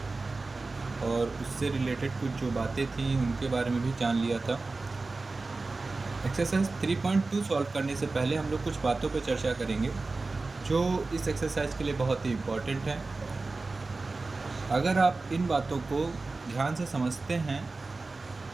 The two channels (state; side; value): quieter; left; 3.6 dB